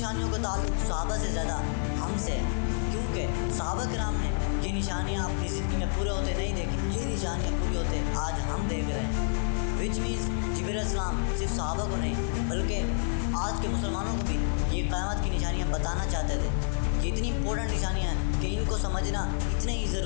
کا تعلق صحابہ سے زیادہ ہم سے ہے، کیونکہ صحابہ کرام نے یہ نشانیاں اپنی زندگی میں پورے ہوتے نہیں دیکھی، یہ نشانیاں پوری ہوتے آج ہم دیکھ رہے ہیں، وچ مینس جبرائیل علیہ السلام صرف صحابہ کو نہیں بلکہ آج کے مسلمانوں کو بھی یہ قیامت کی نشانیاں بتانا چاہتے تھے۔ یہ اتنی امپورٹنٹ نشانیاں ہیں کہ ان کو سمجھنا اتنا ہی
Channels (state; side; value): silent; right; 59 dB below the other